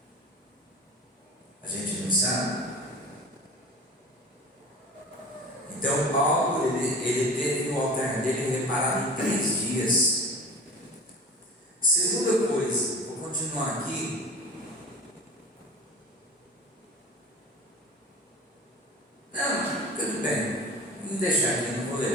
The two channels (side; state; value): both; normal; correlation 0.36